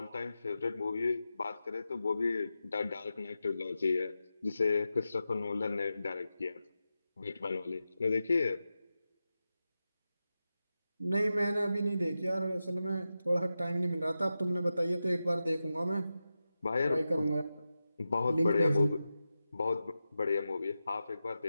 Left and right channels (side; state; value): both; inverted; correlation -0.92